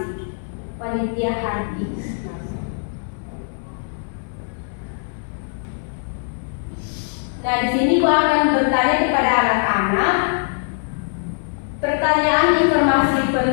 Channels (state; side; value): silent; right; digital silence